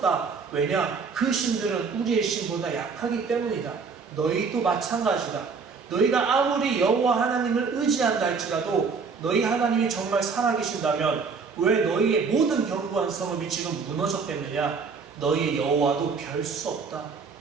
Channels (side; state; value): left; quieter; 5.1 dB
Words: 왜냐? 그 신들은 우리의 신보다 약하기 때문이다. 너희도 마찬가지다. 너희가 아무리 여호와 하나님을 의지한다 할지라도 너희 하나님이 정말 살아계신다면 왜 너희의 모든 견고한 성읍이 지금 무너졌겠느냐? 너희의 여호와도 별 수 없다.